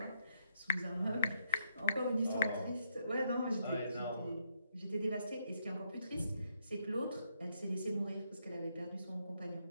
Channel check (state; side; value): inverted; both; correlation -0.76